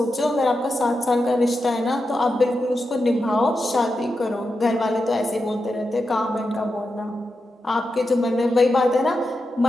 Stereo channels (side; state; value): both; normal; correlation 0.88